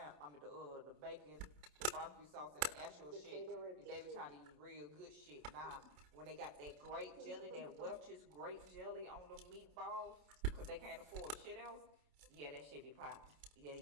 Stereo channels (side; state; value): left; late; 27 ms